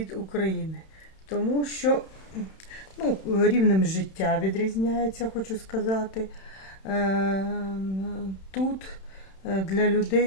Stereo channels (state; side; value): late; right; 31 ms